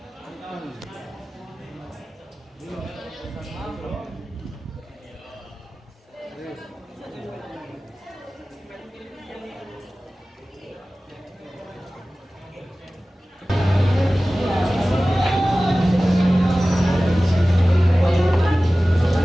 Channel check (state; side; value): normal; both; correlation 0.97